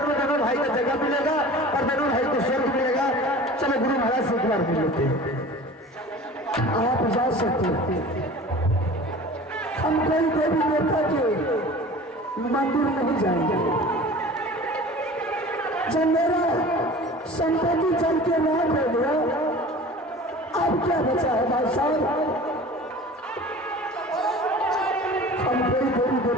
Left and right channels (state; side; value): normal; both; correlation 0.41